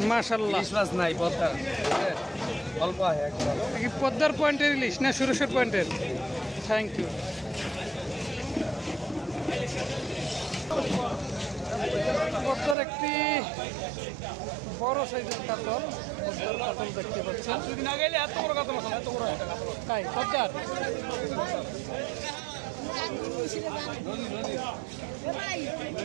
মাশাআল্লাহ ইলিশ মাছ নাই পদ্মার অল্প কি পদ্মার পয়েন্টের ইলিশ না সুরেশ্বর পয়েন্টের থ্যাংক ইউ পদ্মার একটি বড় সাইজের কাতল পদ্মার কাতল দেখতে পাচ্ছেন দুদিন আগে এত বড় কাতল এত বড় তাই পদ্মার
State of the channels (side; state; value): left; drops out; at 12.8 s